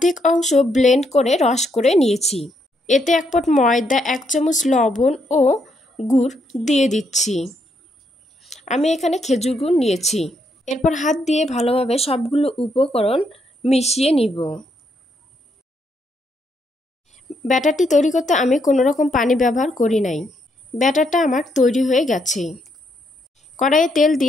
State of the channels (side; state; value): both; normal; correlation 0.76